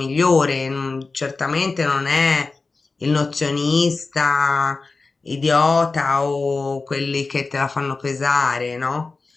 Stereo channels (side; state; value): right; quieter; 3.9 dB